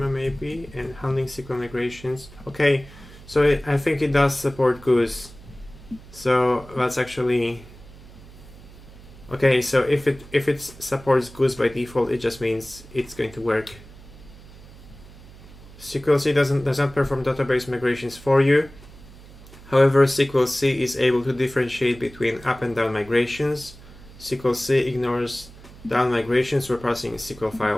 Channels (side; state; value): right; noise; hum, 20 dB below the sound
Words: maybe, and handling SQL migrations. Okay, so I think it does support Goose. So that's actually okay. So if it supports Goose by default, it just means it's going to work. sqlc does not perform database migrations for you. However, sqlc is able to differentiate between up and down migrations. sqlc ignores down migrations for passing SQL